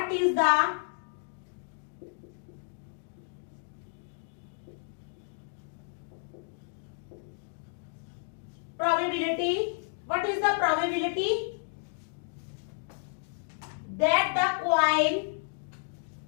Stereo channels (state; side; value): silent; right; digital silence